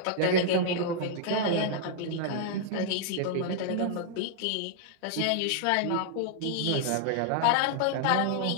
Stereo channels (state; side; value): different; both; correlation -0.01